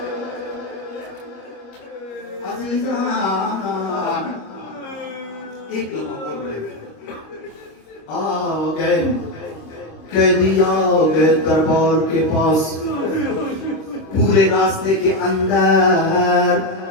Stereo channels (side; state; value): right; late; 25 ms